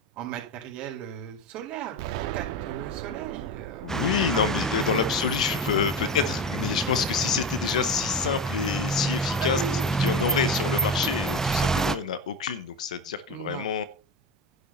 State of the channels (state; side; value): normal; both; correlation 0.23